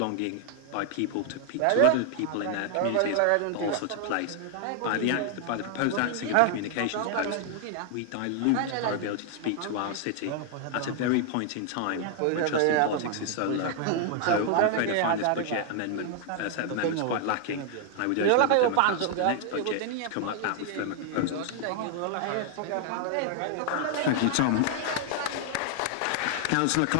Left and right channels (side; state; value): both; different; correlation 0.00